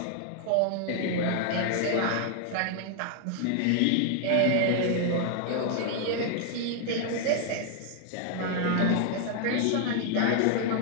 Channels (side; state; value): both; different; correlation 0.00